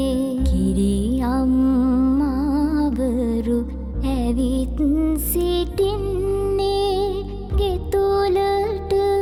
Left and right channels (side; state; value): both; identical; correlation 1.00